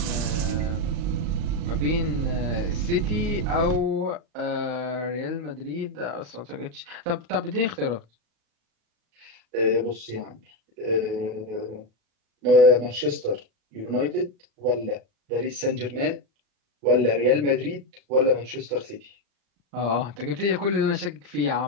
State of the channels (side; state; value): left; late; 36 ms